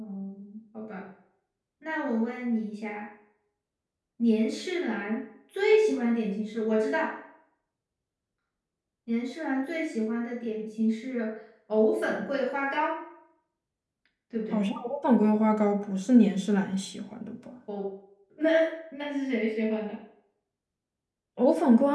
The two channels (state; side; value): identical; both; correlation 1.00